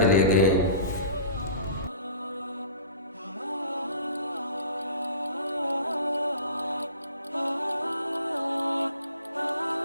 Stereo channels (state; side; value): inverted; both; correlation -0.42